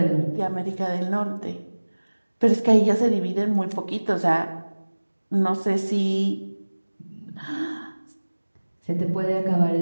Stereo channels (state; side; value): inverted; both; correlation -1.00